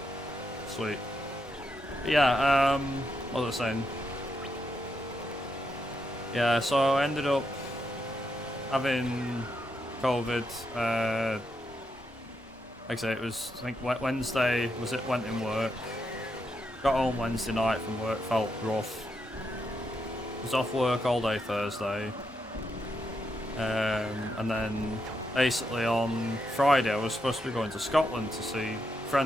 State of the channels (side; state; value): both; normal; correlation 0.82